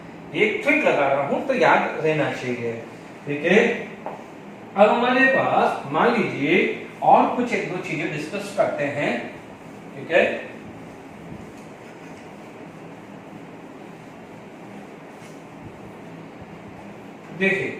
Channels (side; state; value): both; identical; correlation 1.00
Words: एक ट्रिक लगा रहा हूं तो याद रहना चाहिए। ठीक है, अब हमारे पास मान लीजिए और कुछ एक दो चीजें डिस्कस करते हैं। ठीक है, देखिए